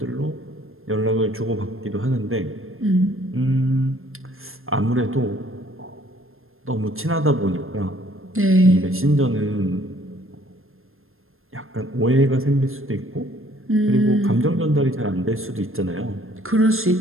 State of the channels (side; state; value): left; late; 0.61 ms